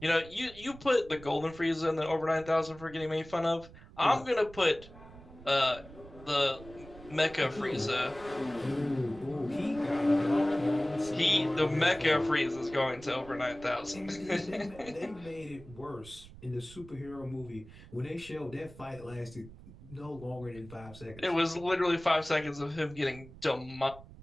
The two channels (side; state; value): right; noise; rumble, 18 dB below the sound